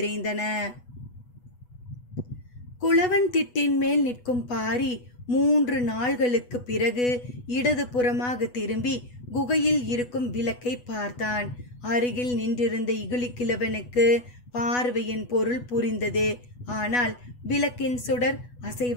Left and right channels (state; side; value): late; right; 8.1 ms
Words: குளவன் திட்டின் மேல் நிற்கும் பாரி 3 நாள்களுக்கு பிறகு இடது புறமாக திரும்பி குகையில் இருக்கும் விளக்கை பார்த்தான். அருகில் நின்றிருந்த இகுலிக்கிழவனுக்கு பார்வையின் பொருள் புரிந்தது. ஆனால் விளக்கின் சுடர்